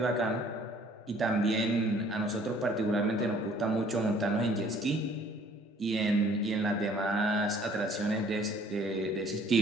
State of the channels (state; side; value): normal; both; correlation 0.57